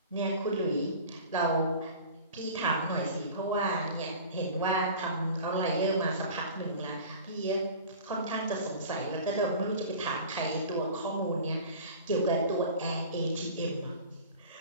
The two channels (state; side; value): inverted; both; correlation -0.39